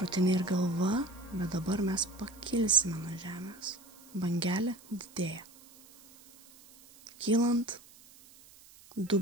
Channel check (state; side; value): noise; right; hiss, 23 dB below the sound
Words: ir galva, bet dabar mes pakilsime nuo žemės. Bangelė didėja. Kylant,